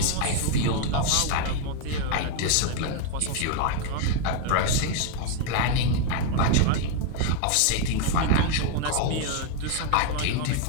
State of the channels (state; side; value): different; both; correlation 0.01